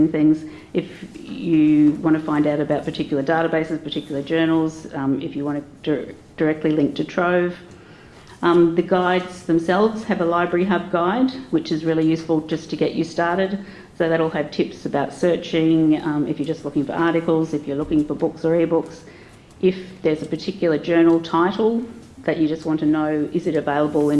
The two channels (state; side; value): identical; both; correlation 1.00